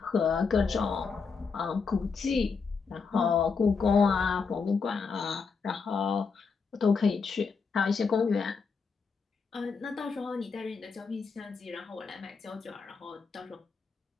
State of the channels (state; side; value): quieter; right; 5.1 dB